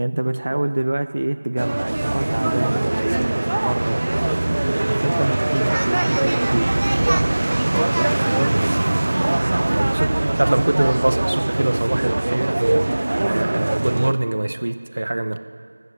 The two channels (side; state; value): both; inverted; correlation -1.00